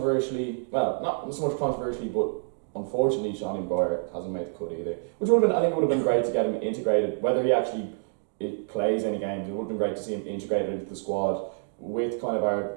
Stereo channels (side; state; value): left; silent; digital silence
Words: well, not so much controversially, but unfortunately, Seanie Maguire hasn't made the cut either. Which would have been, I think, it would have been great to get him integrated. Whether he actually plays any games, it would have been great to see him integrated into the squad with kind of our